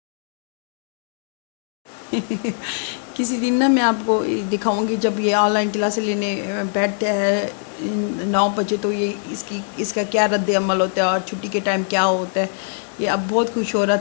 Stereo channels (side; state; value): right; silent; digital silence